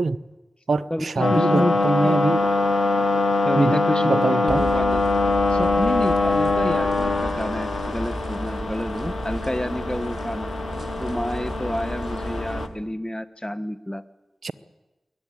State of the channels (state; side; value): normal; both; correlation 0.88